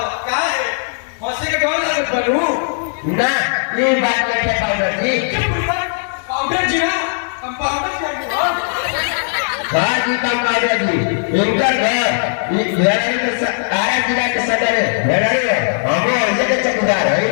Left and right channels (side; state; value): right; silent; 68 dB below the other